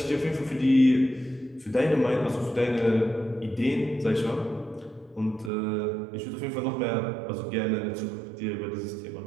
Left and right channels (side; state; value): left; drops out; at 5.5 s